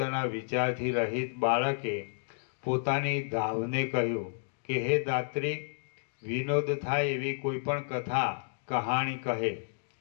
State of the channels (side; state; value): right; silent; digital silence